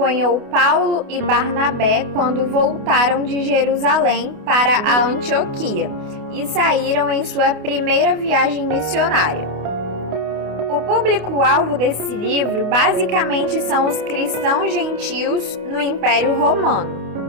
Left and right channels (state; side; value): late; left; 28 ms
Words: Paulo e Barnabé quando voltaram de Jerusalém para a Antioquia e saíram em sua primeira viagem missionária. O público-alvo desse livro basicamente são os cristãos gentios no Império